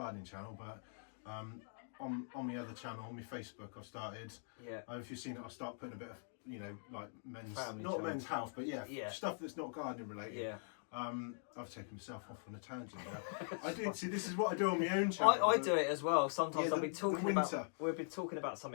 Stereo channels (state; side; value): silent; right; digital silence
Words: channel, but on the other channel, on my Facebook, I've started. Yeah. If you've seen it, I'll start putting a bit of, you know, like men's, Family not channel. men's health, but yeah, Yeah. stuff that's not gardening related. Yeah. I've taken myself off on a tangent now. I did see, this is what I do on my own channel. I do it as well. Sometimes Yeah, I'll be talking winter. about, we've been talking about